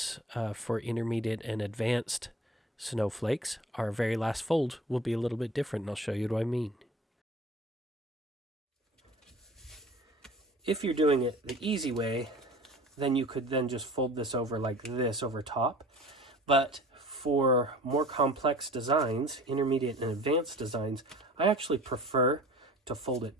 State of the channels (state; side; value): normal; both; correlation 0.44